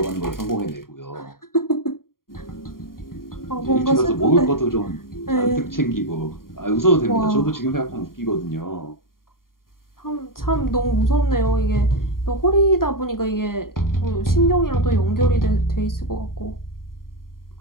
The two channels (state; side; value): late; right; 0.91 ms